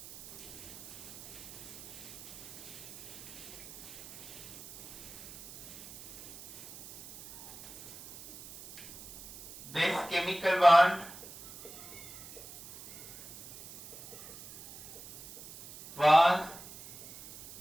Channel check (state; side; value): noise; right; hiss, 17 dB below the sound